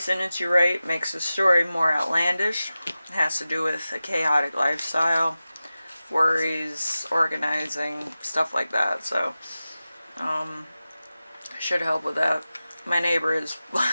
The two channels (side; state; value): both; inverted; correlation -0.95